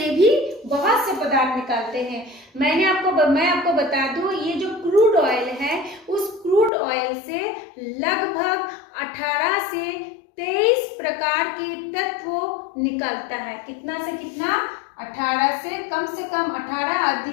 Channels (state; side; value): drops out; right; at 6.7 s